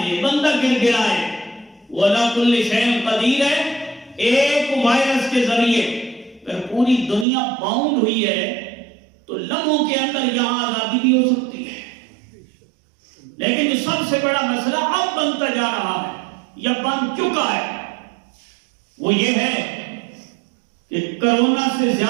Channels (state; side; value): drops out; left; at 7.2 s